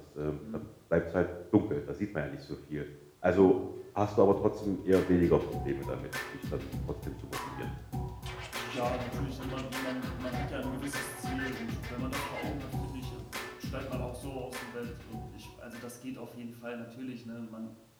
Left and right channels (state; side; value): identical; both; correlation 1.00